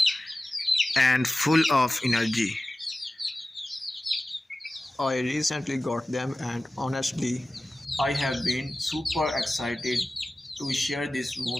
and full of energy. I recently got them, and honestly, I have been super excited to share this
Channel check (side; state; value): both; normal; correlation 0.96